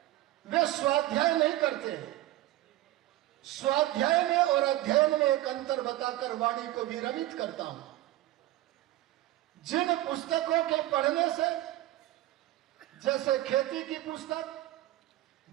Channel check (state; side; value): quieter; left; 16.1 dB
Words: वे स्वाध्याय नहीं करते हैं। स्वाध्याय में और अध्ययन में एक अंतर बताकर वाणी को विरमित करता हूं। जिन पुस्तकों के पढ़ने से, जैसे खेती की पुस्तक,